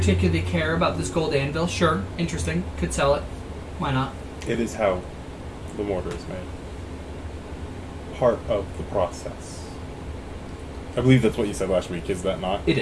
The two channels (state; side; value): identical; both; correlation 1.00